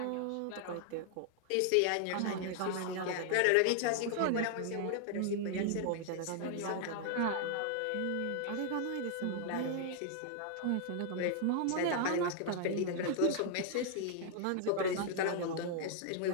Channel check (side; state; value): both; different; correlation 0.00